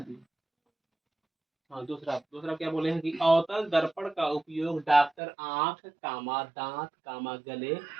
हाँ, दूसरा दूसरा क्या बोले हैं कि अवतल दर्पण का उपयोग डॉक्टर आंख कामा दांत कामा गले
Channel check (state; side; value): drops out; left; at 5.1 s